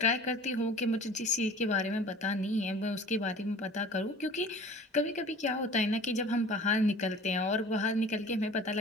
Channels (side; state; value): both; normal; correlation 0.44